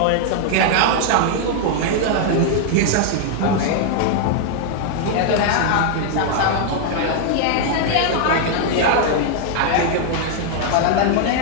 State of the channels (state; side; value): different; both; correlation 0.00